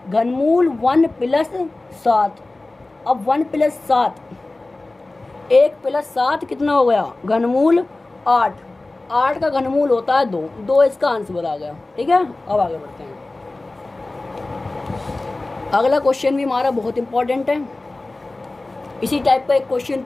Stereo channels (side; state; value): right; quieter; 3.0 dB